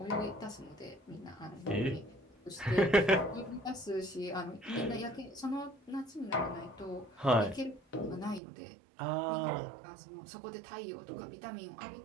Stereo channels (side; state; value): left; drops out; at 8.4 s